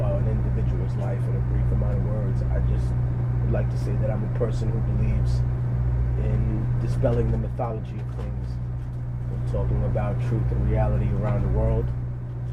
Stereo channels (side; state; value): both; identical; correlation 1.00